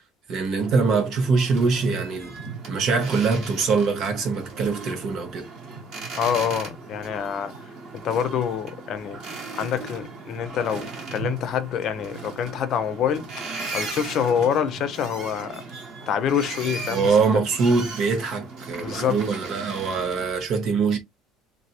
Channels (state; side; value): normal; both; correlation 0.58